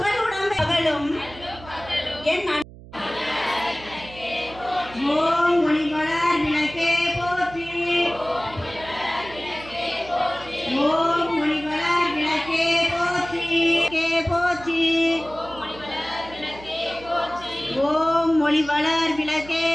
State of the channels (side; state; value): right; noise; hum, 18 dB below the sound